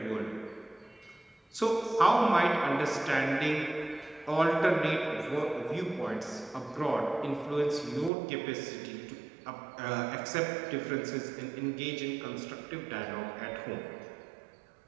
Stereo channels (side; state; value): left; drops out; at 8.1 s